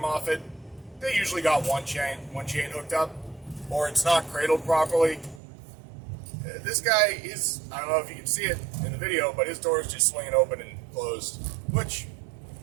They usually got one chain hooked up, or it's not cradled properly. This guy is, I don't know if you can see it in the video, but his door is just swinging open and closed, which,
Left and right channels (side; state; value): left; drops out; at 5.4 s